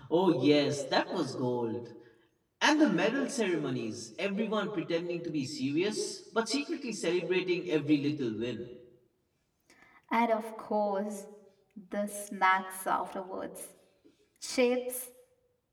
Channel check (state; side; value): identical; both; correlation 1.00